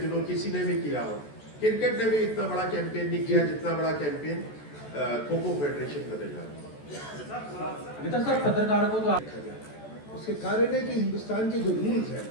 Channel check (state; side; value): late; right; 14 ms